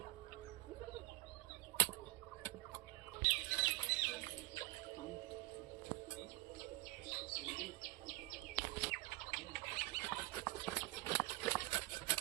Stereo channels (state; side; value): quieter; left; 19.2 dB